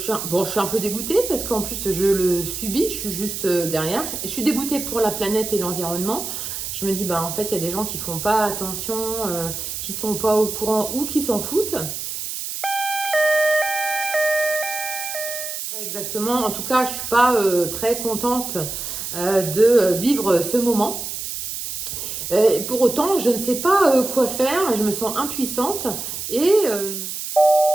suis un peu dégoûtée parce qu'en plus je le subis, je suis juste derrière. Et je suis dégoûtée pour la planète et l'environnement. Je me dis, bah, en fait, il y a des gens qui font pas attention, qui sont pas au courant ou qui s'en foutent. Pas exactement. En tout cas, je suis pas très contente de vivre ce moment. Pour autant, je ne sais pas quoi faire. Je me sens impuissante et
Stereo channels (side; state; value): right; noise; hiss, 6 dB below the sound